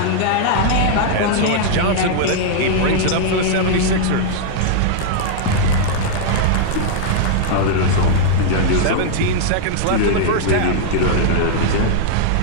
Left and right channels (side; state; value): both; different; correlation -0.01